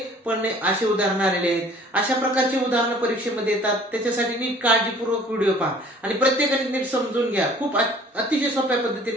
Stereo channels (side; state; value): both; normal; correlation 0.52